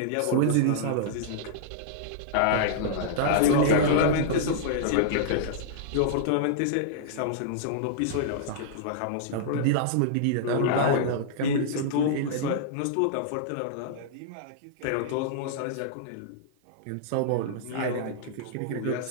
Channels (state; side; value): different; both; correlation -0.02